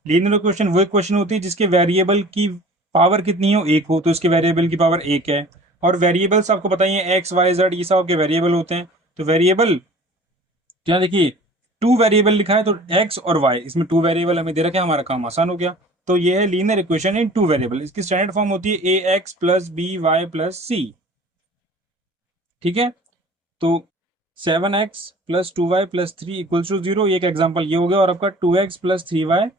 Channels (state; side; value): normal; both; correlation 0.45